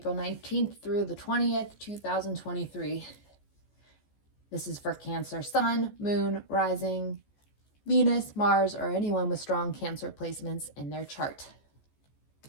19th through the 20th, 2023. This is for Cancer Sun, Moon, Rising, Venus, Mars, or anyone with strong Cancer placements in their chart.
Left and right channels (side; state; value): right; late; 14 ms